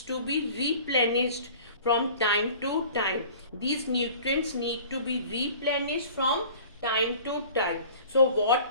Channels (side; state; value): both; inverted; correlation -0.45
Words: to be replenished from time to time. These nutrients need to be replenished from time to time. So what